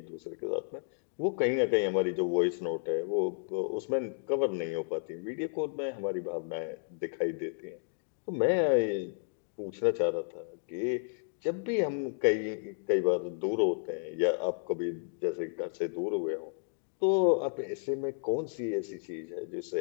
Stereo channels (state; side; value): silent; right; digital silence